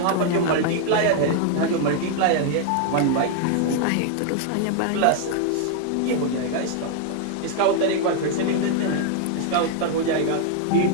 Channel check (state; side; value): different; both; correlation 0.00